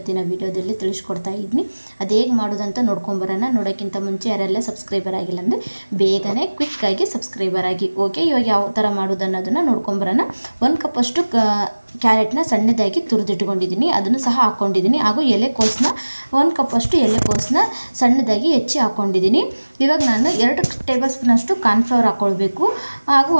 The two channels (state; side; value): inverted; both; correlation -1.00